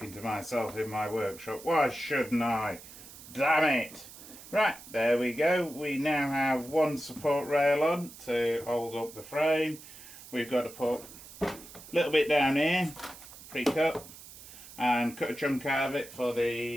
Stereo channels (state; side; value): noise; right; hiss, 17 dB below the sound